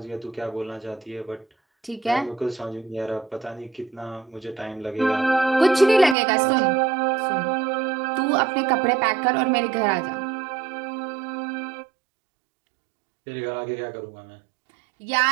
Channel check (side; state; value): left; drops out; at 6.2 s